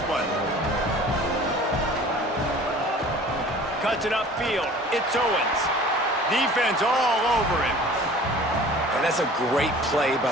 one. Cuts it upfield. It's Owens. Defense all over him. And that's a great play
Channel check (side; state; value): both; normal; correlation 0.46